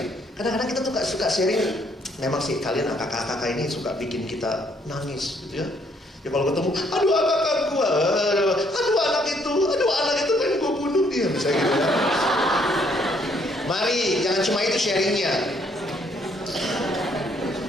Kadang-kadang kita tuh suka sharing. Memang sih kalian kakak-kakak ini suka bikin kita nangis gitu ya. Ya kalau ketemu, aduh kakak gue, aduh anak itu pengen gue bunuh dia, misalnya gitu ya. Mari, jangan cuma itu sharingnya.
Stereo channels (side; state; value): both; normal; correlation 0.68